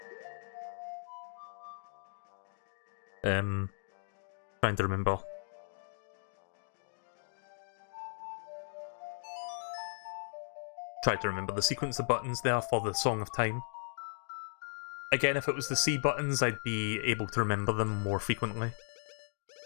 Trying to remember. Try to remember the sequence of buttons there for the Song of Time. Again, if it was the C buttons, I'd be able to remember them more frequently.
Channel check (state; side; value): silent; right; digital silence